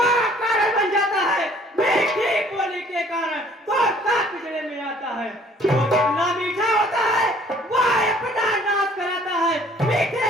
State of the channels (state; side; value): normal; both; correlation 0.57